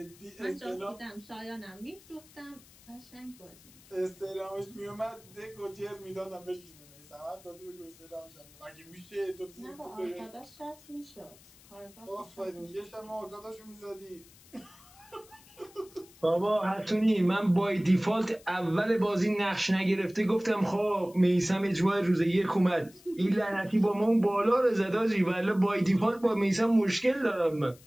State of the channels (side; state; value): left; noise; hiss, 24 dB below the sound